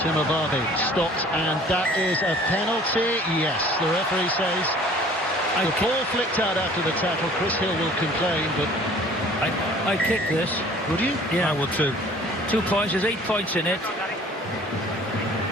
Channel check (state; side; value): normal; both; correlation 0.50